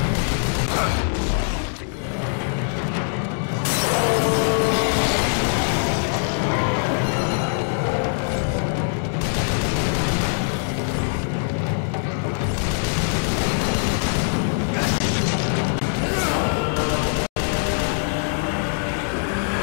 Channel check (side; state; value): right; silent; digital silence